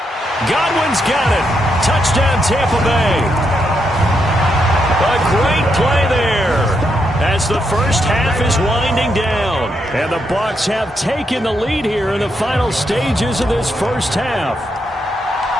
Godwin's got it. Touchdown, Tampa Bay. A great play there as the first half is winding down. And the Bucs have taken the lead here in the final stages of this first half.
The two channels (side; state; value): both; normal; correlation 0.80